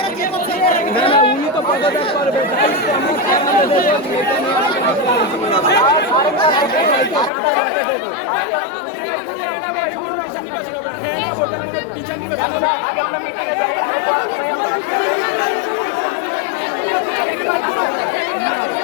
উনি তো পদত্যাগ করবে। আগে আমরা মিটিংয়ে যাই।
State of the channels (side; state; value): right; drops out; at 7.3 s